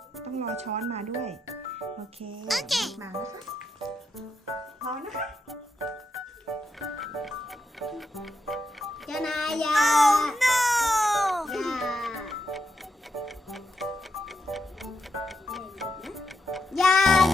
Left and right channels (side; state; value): both; normal; correlation 0.83